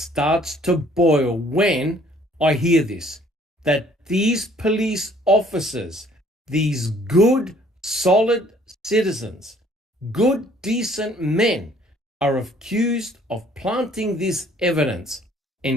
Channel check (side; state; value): both; normal; correlation 0.59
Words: to boil when I hear this, that these police officers, these good, solid citizens, good, decent men, are accused of planting this evidence,"